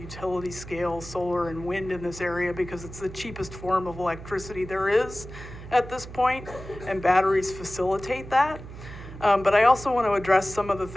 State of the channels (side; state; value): right; noise; hum, 13 dB below the sound